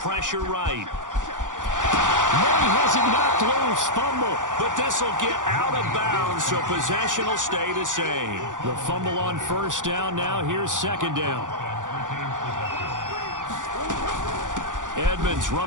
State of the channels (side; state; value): left; late; 0.87 ms